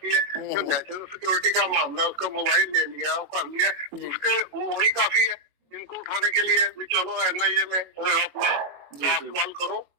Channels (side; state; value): left; late; 22 ms